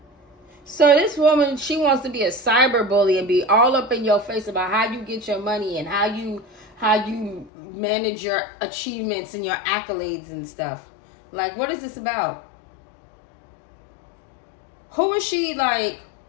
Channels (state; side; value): drops out; right; at 7.5 s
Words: So this woman, she wants to be a cyber bully and be all up in your face about how you get your money and how you manage your achievements and your accolades and stuff. Like, what is this about? Who is she? Like,